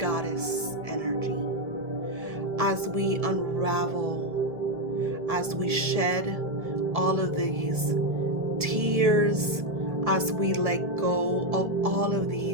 energy. As we unravel, as we shed all of these tears, as we let go of all of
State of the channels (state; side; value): late; left; 1.7 ms